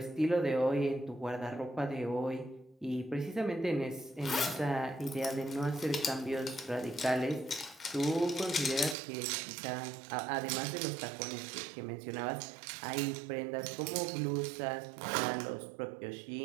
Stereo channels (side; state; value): left; drops out; at 9.0 s